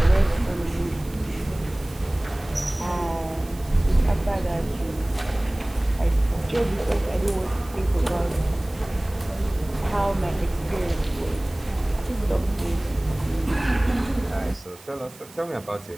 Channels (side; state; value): right; noise; hiss, 22 dB below the sound